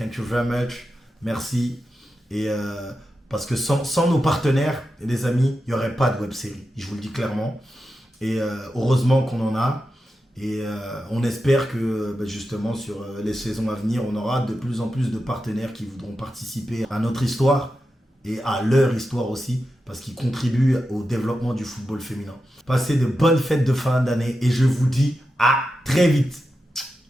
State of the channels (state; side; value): normal; both; correlation 0.90